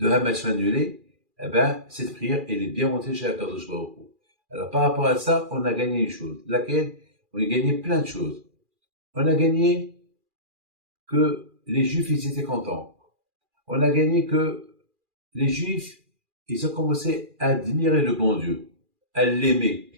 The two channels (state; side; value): late; left; 2.4 ms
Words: Hamas soient annulés, eh ben, cette prière, elle est bien montée chez Akadosh Baruch Hu. Alors, par rapport à ça, on a gagné une chose. Laquelle? On a gagné plein de choses. On a gagné que les Juifs, ils étaient contents. On a gagné que les Juifs, ils ont commencé à admirer le bon Dieu, à l'aimer.